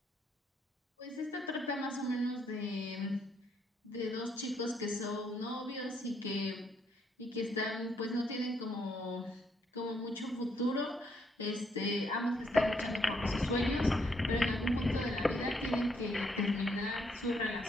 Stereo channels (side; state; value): both; normal; correlation 0.73